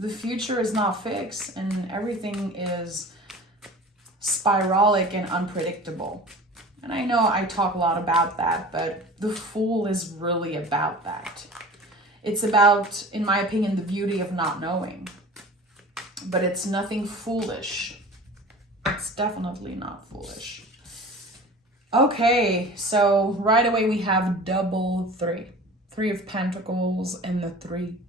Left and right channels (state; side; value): normal; both; correlation 0.40